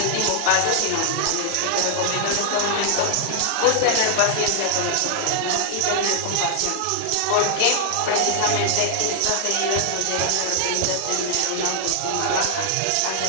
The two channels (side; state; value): both; different; correlation 0.00